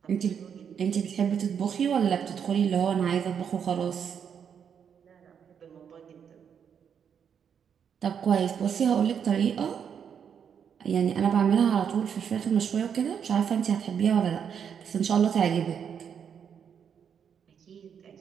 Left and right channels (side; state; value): left; quieter; 7.6 dB